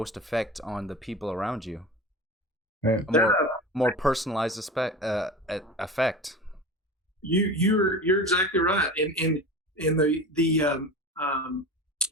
effect on the people around you. Right. A more personalized effect. You're exactly right. And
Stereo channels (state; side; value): normal; both; correlation 0.32